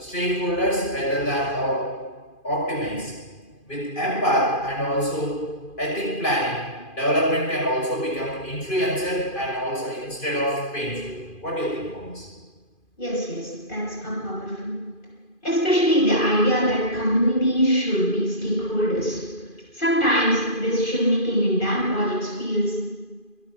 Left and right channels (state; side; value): late; right; 2.5 ms